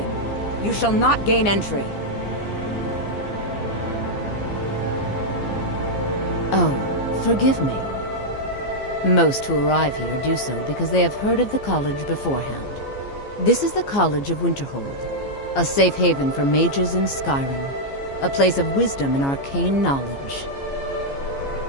You shall not gain entry. Oh, forgive me. Most who arrive here do so because they have heard of the college beforehand. This is the College of Winterhold, a safe haven for mages in Skyrim. A place of wisdom and arcane knowledge.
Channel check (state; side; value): late; right; 15 ms